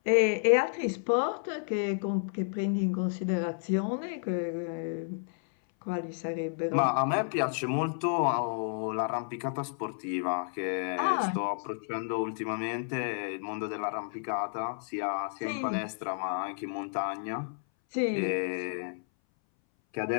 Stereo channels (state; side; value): silent; right; 57 dB below the other